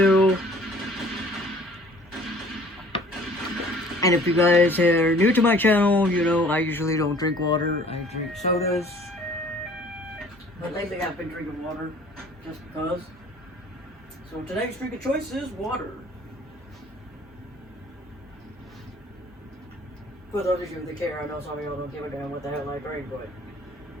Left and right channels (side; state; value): both; normal; correlation 0.53